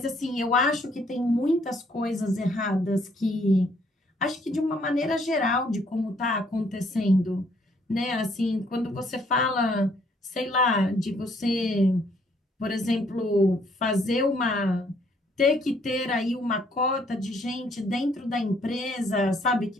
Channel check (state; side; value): normal; both; correlation 0.66